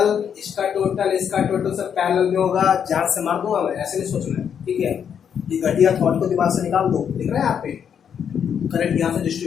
सब पैरेलल में होगा, जान से मार दूंगा मैं, ऐसे नहीं सोचना है, ठीक है। ये घटिया थॉट को दिमाग से निकाल दो, दिख रहा है यहाँ पे, करंट यहाँ से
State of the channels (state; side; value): quieter; right; 8.0 dB